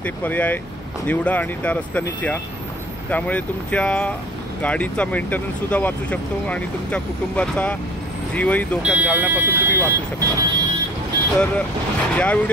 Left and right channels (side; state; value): both; normal; correlation 0.48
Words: ते पर्याय निवडा आणि त्या रस्त्यानेच या. त्यामुळे तुमच्या गाडीचा मेंटेनन्ससुद्धा वाचू शकतो आणि तुमच्या कुटुंबाचा जीवही धोक्यात घालण्यापासून तुम्ही वाचू शकता. तर या